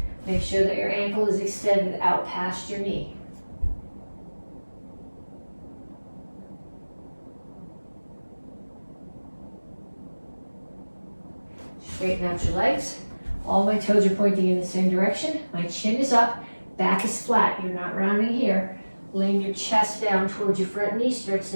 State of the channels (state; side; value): inverted; both; correlation -1.00